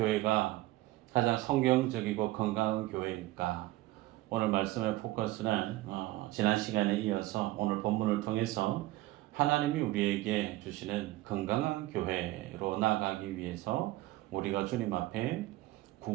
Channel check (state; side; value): quieter; left; 17.4 dB